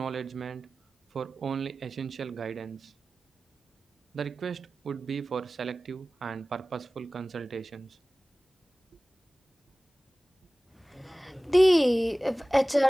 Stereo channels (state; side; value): normal; both; correlation 0.97